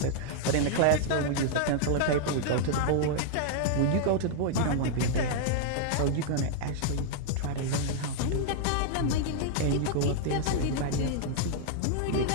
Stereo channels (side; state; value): both; different; correlation -0.01